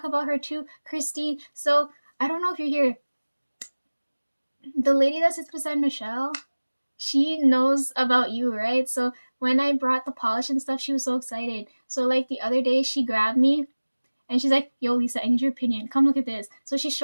about her too, Christine. So I don't know if you're here. The lady that sits beside Michelle, she knows about you, right? So when I brought the polish and stuff, she was so excited. So like the other day, she grabbed me and she's like, yo, Lisa, I need your opinion. Come look at this. So she's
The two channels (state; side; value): inverted; both; correlation -1.00